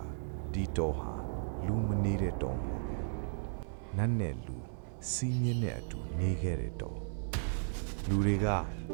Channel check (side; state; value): left; silent; 54 dB below the other